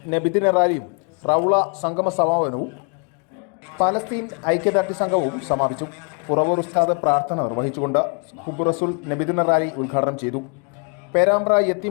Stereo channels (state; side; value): quieter; right; 38.8 dB